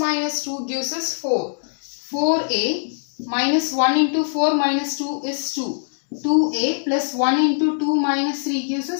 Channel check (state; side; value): silent; right; digital silence